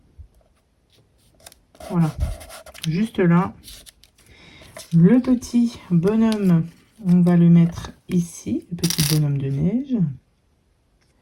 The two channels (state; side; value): identical; both; correlation 1.00